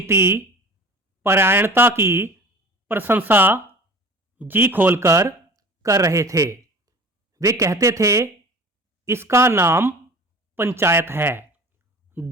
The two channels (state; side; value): normal; both; correlation 0.41